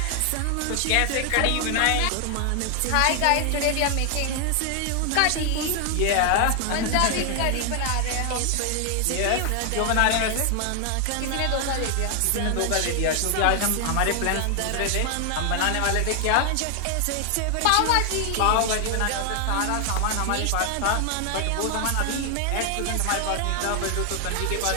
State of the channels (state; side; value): different; both; correlation 0.00